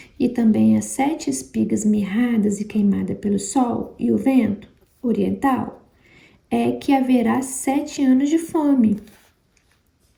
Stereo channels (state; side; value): identical; both; correlation 1.00